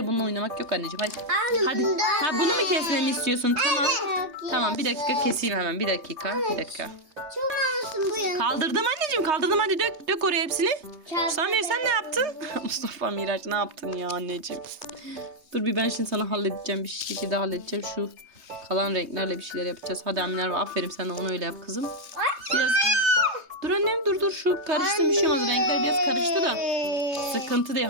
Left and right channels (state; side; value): late; left; 3.2 ms